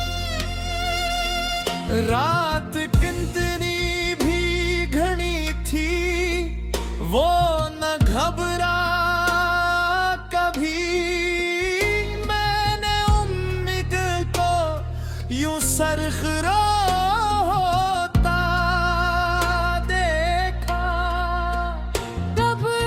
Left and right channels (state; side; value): identical; both; correlation 1.00